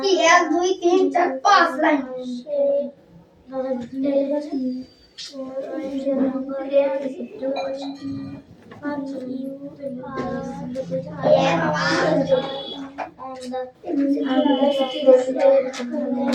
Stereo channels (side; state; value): both; identical; correlation 1.00